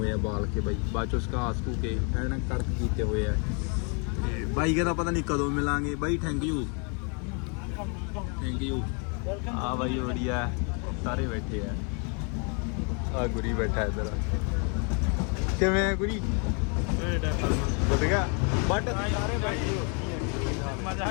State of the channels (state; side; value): quieter; right; 37.1 dB